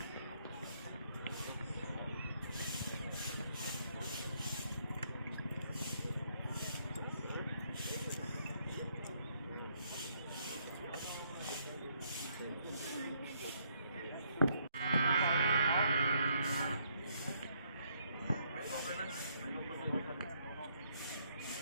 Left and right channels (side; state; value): both; inverted; correlation -0.71